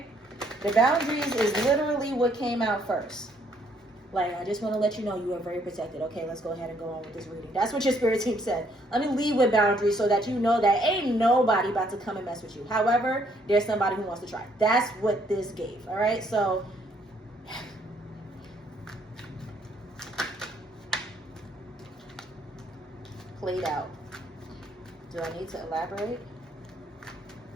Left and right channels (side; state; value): both; normal; correlation 0.67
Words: The boundaries is literally what came out first. Like, I just want to let you know you are very protected. Okay, let's go ahead and go on with this reading. That's what your spirit team said. Let me leave with boundaries so that you know that ain't nobody about to come and mess with you. However, there's somebody who wants to try. That's what this gave, all right? So, played out. Do I need to elaborate?